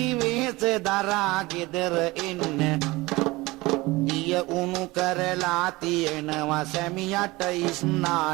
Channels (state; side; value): quieter; left; 21.4 dB